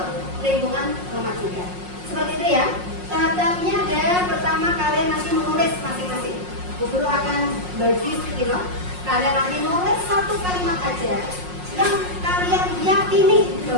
lingkungan rumah juga. Seperti itu ya. Tahap-tahapnya ada, pertama kalian nanti menulis masing-masing. Bu Guru akan bagi skilo. Kalian nanti nulis satu kalimat aja yang kalian yakini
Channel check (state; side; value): late; left; 5.5 ms